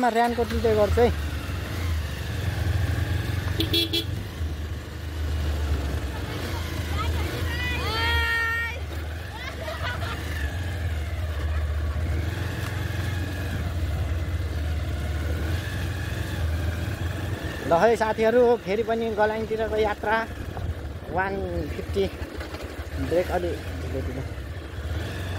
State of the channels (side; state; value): both; identical; correlation 1.00